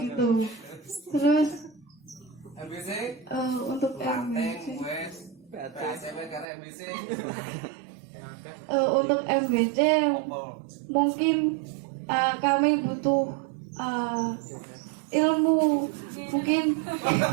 gitu. Terus MBC untuk Ranting wes PACW karena MBC untuk MBC mungkin kami butuh ilmu mungkin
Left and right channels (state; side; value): drops out; left; at 6.5 s